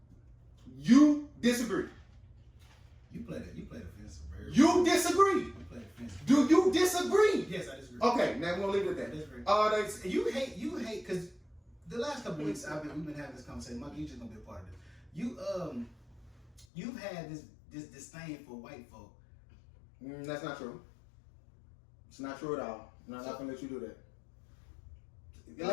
You disagree. You played offensive. You disagree. You played offensive. Do you disagree? Yes, I disagree. Okay, now we're going to leave it at I disagree. that. You hate, because the last couple of weeks we've been having this conversation. Mike, you just gonna be a part of this. You've had this disdain for white folk. That's not true. It's not true at all. I'm not going to let you do that.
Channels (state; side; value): drops out; right; at 16.7 s